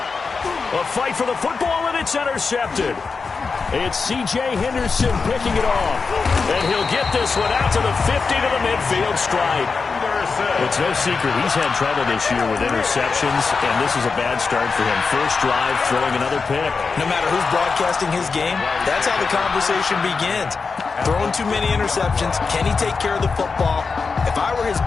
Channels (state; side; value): quieter; right; 4.8 dB